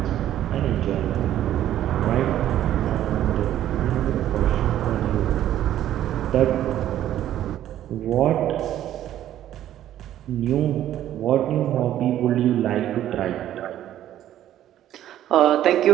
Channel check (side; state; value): left; quieter; 12.1 dB